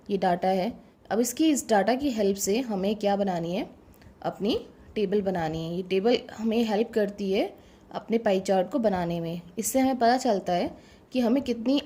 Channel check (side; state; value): both; identical; correlation 1.00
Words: ये डाटा है। अब इस डाटा की हेल्प से हमें क्या बनानी है, अपनी टेबल बनानी है। ये टेबल हमें हेल्प करती है अपने पाई चार्ट को बनाने में। इससे हमें पता चलता है कि हमें कितनी